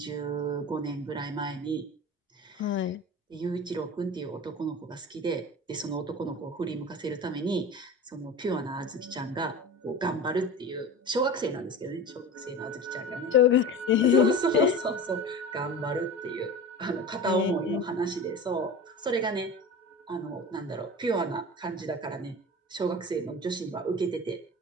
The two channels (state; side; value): normal; both; correlation 0.32